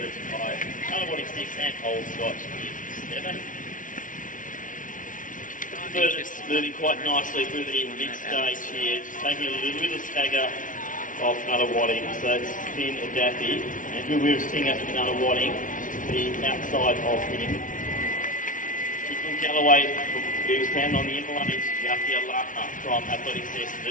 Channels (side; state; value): right; late; 0.38 ms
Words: 5, Nunawading 6, and Old Scotch is 7. Birders moving quite nicely through the mid-stage here, just taking a little bit of stagger off Nunawading, so it's Finn Daffy, and who we're seeing after Nunawading, the outside of him. Kicking Galloway from Williamstown on the inner line is Yakia Laka from Athletics